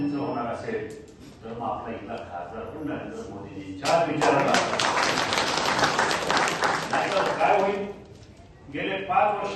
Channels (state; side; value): identical; both; correlation 1.00